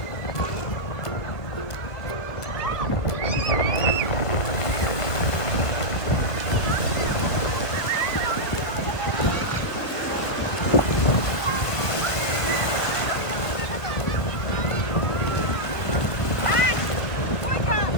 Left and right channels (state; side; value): late; right; 1.5 ms